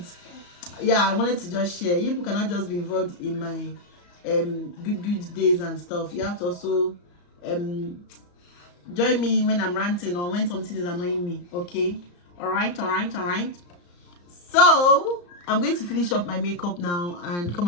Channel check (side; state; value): right; late; 34 ms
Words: yeah, I wanted to just share. You people cannot just be involved in my good days and stuff. You have to also join me when I'm ranting or when something is annoying me, okay? All right. So I'm going to finish up my makeup now and come